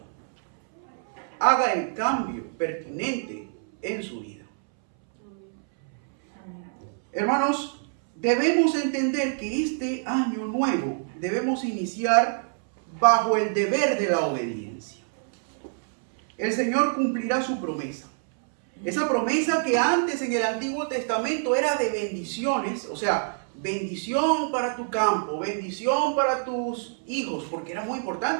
haga el cambio pertinente en su vida. Hermanos, debemos entender que este año nuevo debemos iniciar bajo el deber de la obediencia. El Señor cumplirá su promesa. Esa promesa que antes en el Antiguo Testamento era de bendiciones, o sea, bendición para tu campo, bendición para tus hijos, porque era muy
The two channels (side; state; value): left; silent; 61 dB below the other